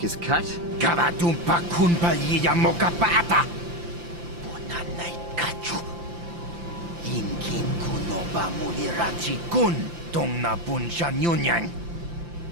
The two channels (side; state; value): left; late; 5.8 ms